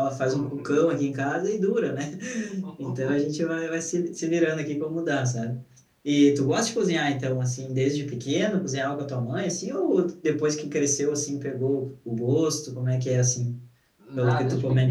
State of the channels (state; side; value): identical; both; correlation 1.00